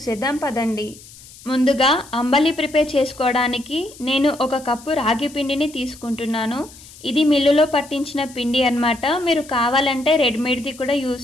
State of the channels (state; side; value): noise; left; hiss, 20 dB below the sound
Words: పదండి. ముందుగా అంబలి ప్రిపేర్ చేసుకోవడానికి నేను 1 కప్పు రాగి పిండిని తీసుకుంటున్నాను. ఇది మిల్లులో పట్టించిన పిండి అన్నమాట. మీరు కావాలంటే రెడీమేడ్ది కూడా